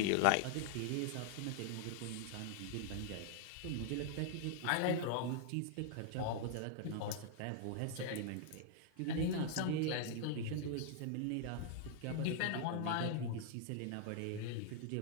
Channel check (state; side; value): different; both; correlation -0.01